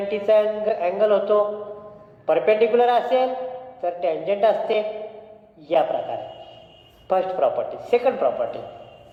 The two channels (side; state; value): both; identical; correlation 1.00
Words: अँगल होतो. परपेंडिक्युलर असेल तर टँजंट असते. या प्रकारे फर्स्ट प्रॉपर्टी. सेकंड प्रॉपर्टी,